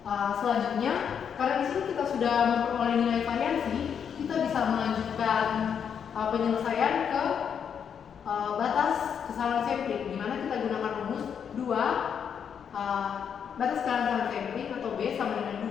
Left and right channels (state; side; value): quieter; right; 7.6 dB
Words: Selanjutnya, karena di sini kita sudah memperoleh nilai variansi, kita bisa melanjutkan penyelesaian ke batas kesalahan sampling, di mana kita gunakan rumus 2 batas kesalahan sampling atau B sama dengan 2